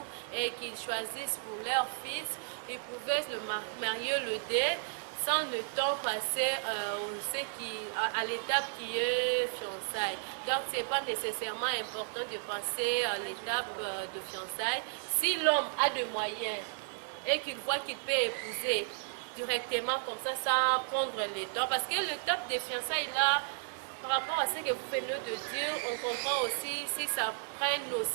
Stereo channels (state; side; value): silent; left; digital silence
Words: et qu'ils choisissent pour leur fils. Ils pouvaient le marier le dé sans le temps passé à l'étape qui est fiançailles. Donc, ce n'est pas nécessairement important de passer à l'étape de fiançailles. Si l'homme a des moyens et qu'il voit qu'il peut épouser directement comme ça, sans prendre le temps, parce que l'étape des fiançailles là, par rapport à ce que vous venez de dire, on comprend aussi si ça prenne